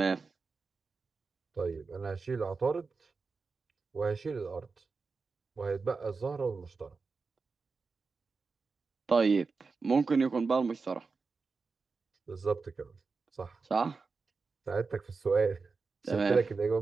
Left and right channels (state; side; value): quieter; left; 4.5 dB